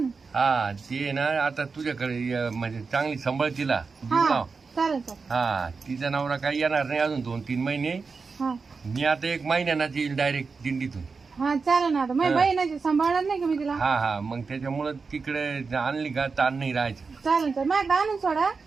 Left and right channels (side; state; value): left; quieter; 4.7 dB